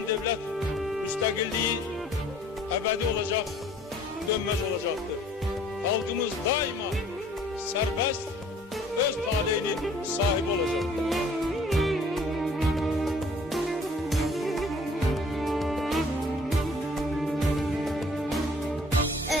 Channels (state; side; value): normal; both; correlation 0.54